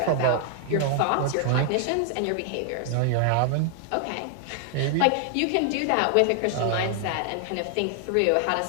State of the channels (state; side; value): different; both; correlation 0.00